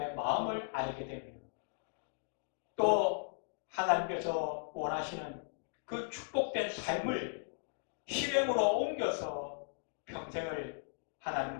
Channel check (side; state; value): right; silent; digital silence